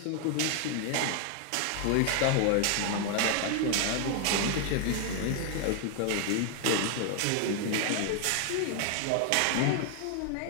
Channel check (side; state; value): both; different; correlation 0.00